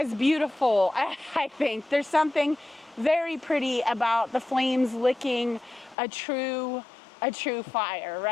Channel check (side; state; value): right; drops out; at 6.0 s